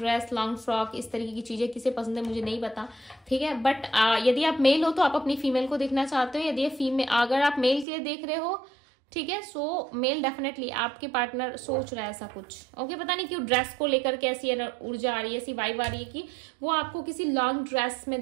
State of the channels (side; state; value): left; drops out; at 7.9 s